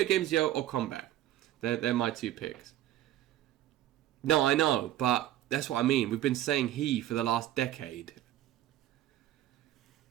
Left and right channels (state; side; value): quieter; left; 13.4 dB